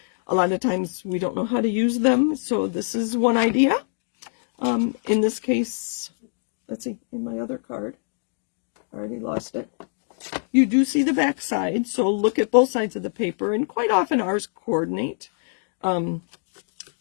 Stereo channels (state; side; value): silent; right; digital silence